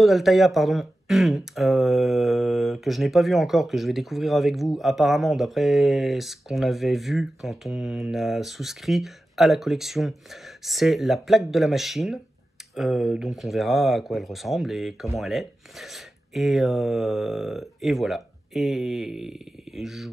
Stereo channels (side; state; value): both; normal; correlation 0.93